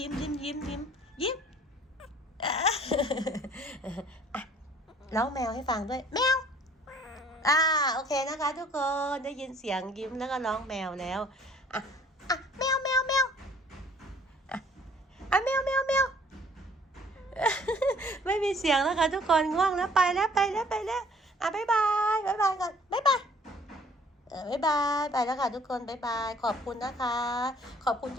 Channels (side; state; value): both; normal; correlation 0.56